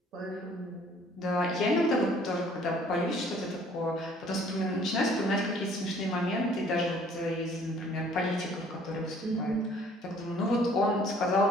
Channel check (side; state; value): both; normal; correlation 0.57